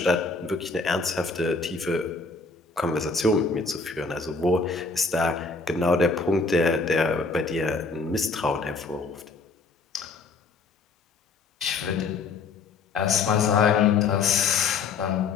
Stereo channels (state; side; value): quieter; right; 4.3 dB